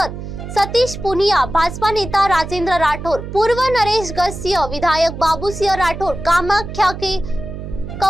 सतीश पुनिया, भाजपा नेता राजेंद्र राठौर, पूर्व नरेश गसिया, विधायक बाबू सिंह राठौर, कामाख्या के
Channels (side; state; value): right; noise; hum, 9 dB below the sound